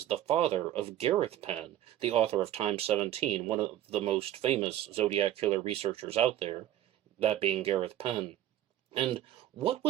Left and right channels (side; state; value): left; quieter; 12.5 dB